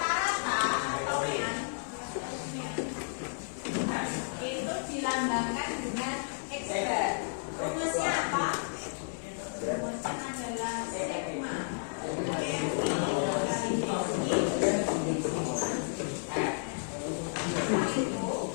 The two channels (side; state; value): right; silent; 56 dB below the other